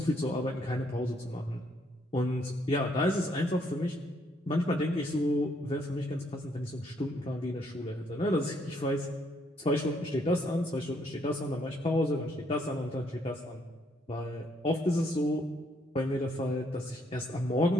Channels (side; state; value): both; normal; correlation 0.70